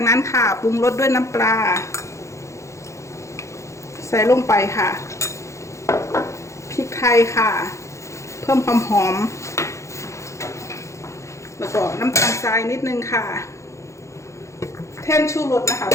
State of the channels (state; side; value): late; right; 0.14 ms